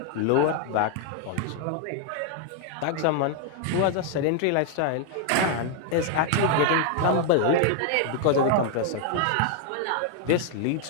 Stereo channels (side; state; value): both; different; correlation 0.00